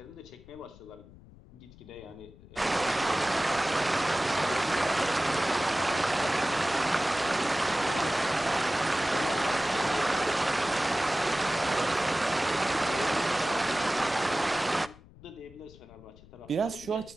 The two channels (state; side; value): noise; left; rumble, 22 dB below the sound